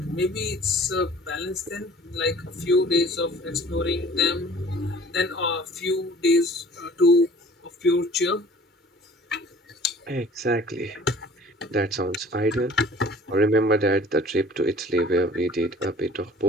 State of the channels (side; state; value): both; normal; correlation 0.49